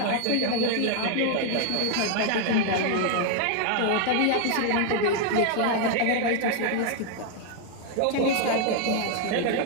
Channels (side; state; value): both; different; correlation 0.00